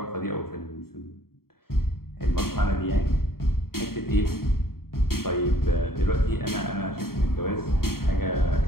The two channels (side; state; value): right; late; 0.93 ms